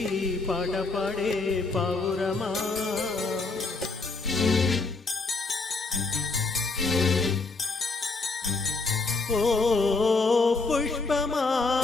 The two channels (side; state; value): right; quieter; 3.8 dB